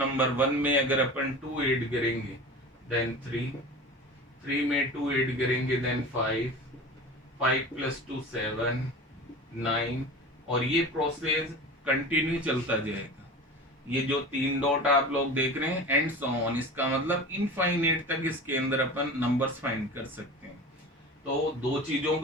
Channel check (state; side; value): normal; both; correlation 0.34